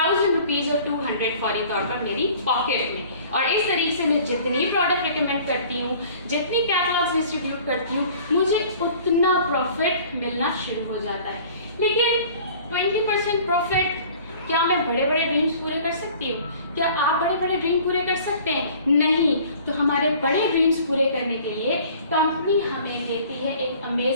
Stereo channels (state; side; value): inverted; both; correlation -0.49